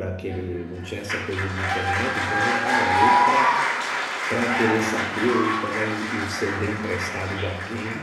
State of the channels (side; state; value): both; identical; correlation 1.00